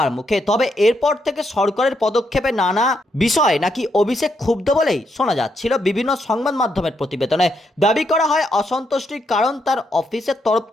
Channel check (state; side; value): normal; both; correlation 0.78